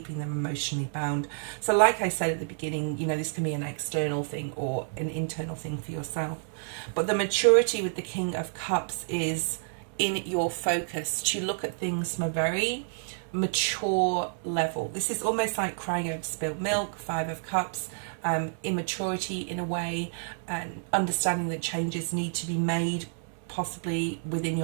them emotionally bound. So like I said at the beginning, you know, this can be an external thing or an internal thing for yourself. But the maturity with the King of Cups is in your focus to look at things from a very mature level. This is almost like crying over spilled milk, Five of Cups, immaturity in a way, and understanding that changes need to be made possibly within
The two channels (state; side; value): silent; left; digital silence